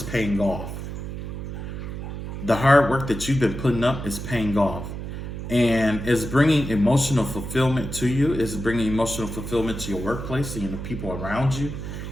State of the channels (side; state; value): right; noise; hum, 7 dB below the sound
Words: paying off. The hard work that you've been putting up is paying off. And it's bringing emotional fulfillment to you. It's bringing emotional fulfillment to your workplace and the people around you.